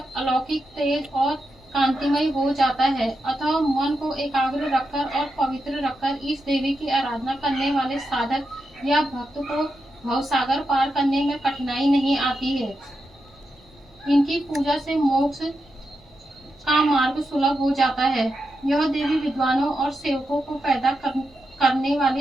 अलौकिक तेज और कांतिमय हो जाता है। अतः मन को एकाग्र रखकर और पवित्र रखकर इस देवी की आराधना करने वाले साधक या भक्त को भवसागर पार करने में कठिनाई नहीं आती है। इनकी पूजा से मोक्ष का मार्ग सुलभ हो जाता है। यह देवी विद्वानों और सेवकों को पैदा करने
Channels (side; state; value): left; noise; rumble, 28 dB below the sound